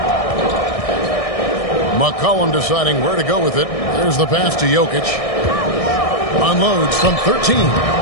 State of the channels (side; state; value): right; late; 1.6 ms